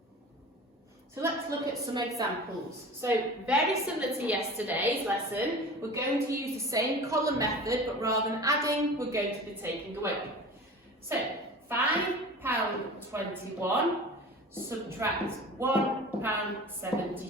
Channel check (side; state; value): both; normal; correlation 0.37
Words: So let's look at some examples. So very similar to yesterday's lesson, we're going to use the same column method, but rather than adding, we're going to be taking away. So £5.21 subtract